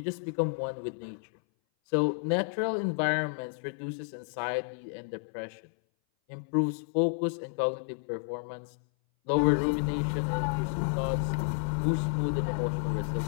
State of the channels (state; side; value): silent; right; 57 dB below the other